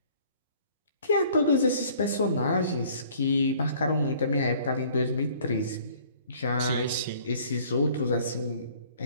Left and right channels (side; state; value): both; inverted; correlation -0.55